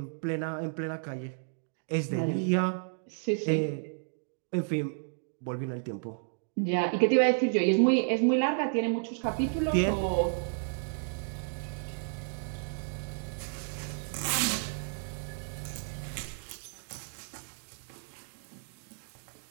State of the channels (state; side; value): silent; left; digital silence